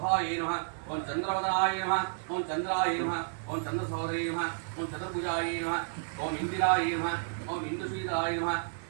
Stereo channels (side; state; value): left; silent; digital silence